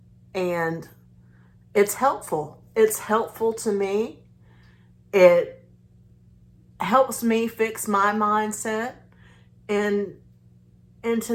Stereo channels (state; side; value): identical; both; correlation 1.00